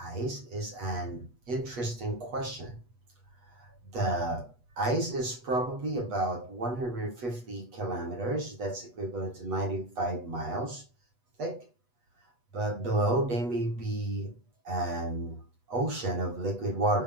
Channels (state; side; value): late; left; 8.2 ms